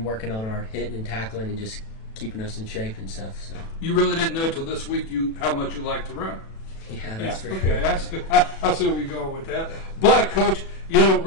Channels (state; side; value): late; right; 36 ms